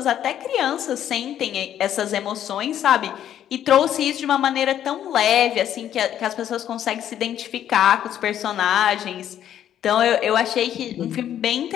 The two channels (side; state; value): right; quieter; 10.6 dB